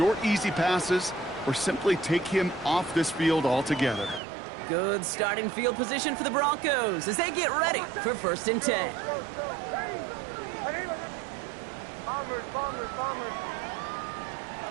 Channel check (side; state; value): left; drops out; at 4.2 s